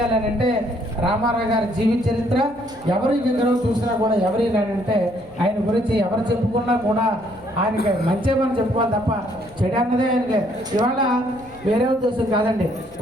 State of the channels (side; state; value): left; noise; hum, 25 dB below the sound